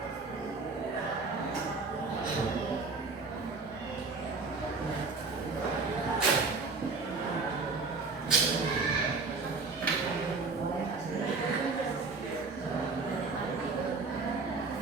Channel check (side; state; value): left; quieter; 4.1 dB